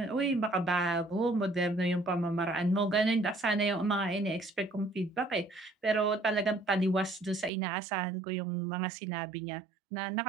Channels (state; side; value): drops out; left; at 7.5 s